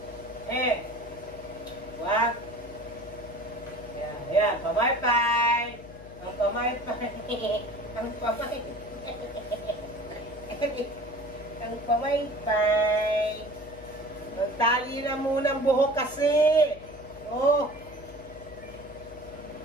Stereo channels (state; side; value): noise; left; hum, 17 dB below the sound